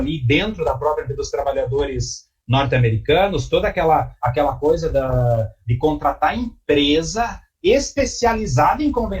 dentro da própria dos trabalhadores norte-americanos, toda aquela coisa de contratar empresa especializada em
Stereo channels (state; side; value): identical; both; correlation 1.00